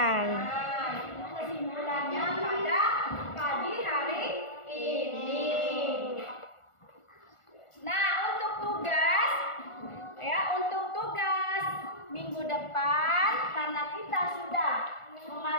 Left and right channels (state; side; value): late; right; 1.4 ms